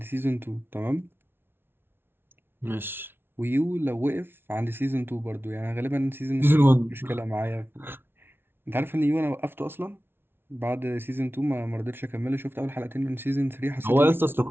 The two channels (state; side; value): late; left; 0.11 ms